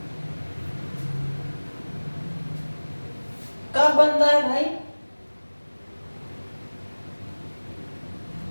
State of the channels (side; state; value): both; inverted; correlation -1.00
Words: कब बनता है भाई?